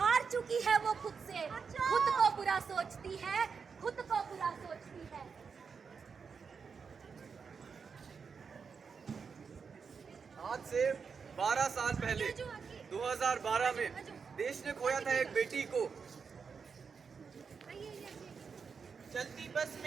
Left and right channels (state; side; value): quieter; left; 5.7 dB